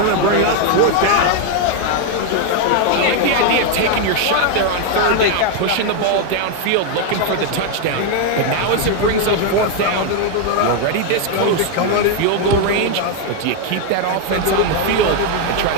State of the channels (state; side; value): different; both; correlation 0.01